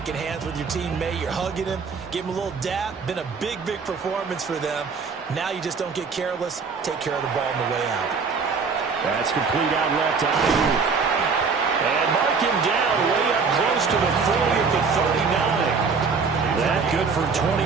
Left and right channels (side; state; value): left; quieter; 5.2 dB